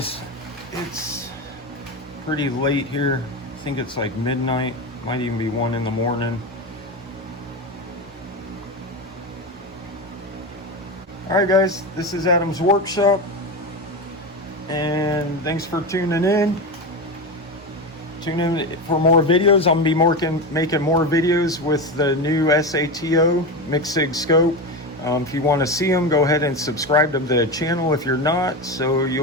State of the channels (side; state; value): both; normal; correlation 0.19